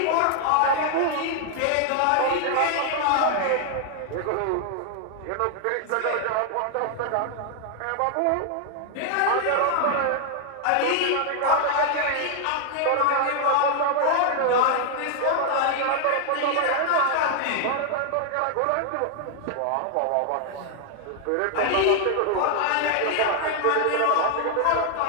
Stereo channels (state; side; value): different; both; correlation 0.00